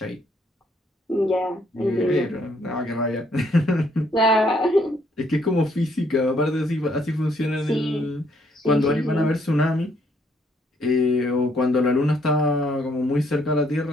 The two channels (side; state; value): both; normal; correlation 0.69